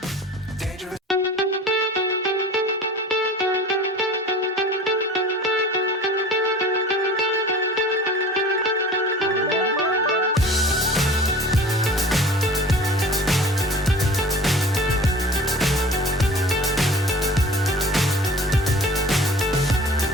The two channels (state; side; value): normal; both; correlation 0.42